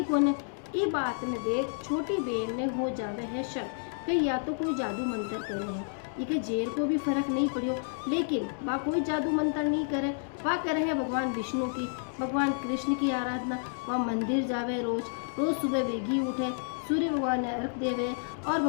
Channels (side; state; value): right; silent; digital silence